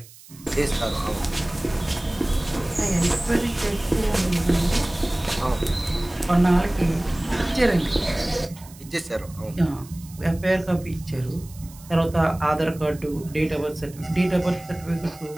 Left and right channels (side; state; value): right; noise; hiss, 21 dB below the sound